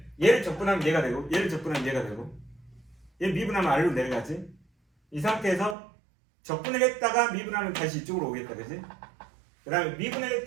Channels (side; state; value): left; drops out; at 5.8 s